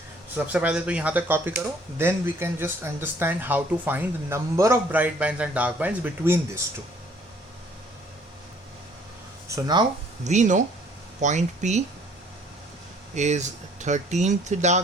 सबसे पहले तो यहाँ तक कॉपी करो, then we can just understand how to find the number of bright bands and dark bands between this two. So now we know point P is 13th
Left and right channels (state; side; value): normal; both; correlation 0.58